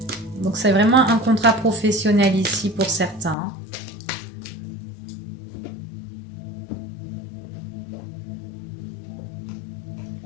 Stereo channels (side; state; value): right; drops out; at 3.4 s